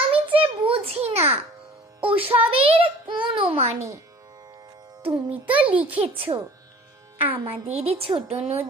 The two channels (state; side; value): normal; both; correlation 0.47